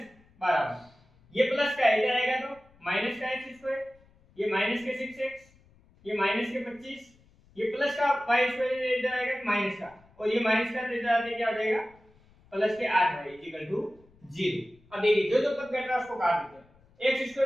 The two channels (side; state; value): left; noise; rumble, 29 dB below the sound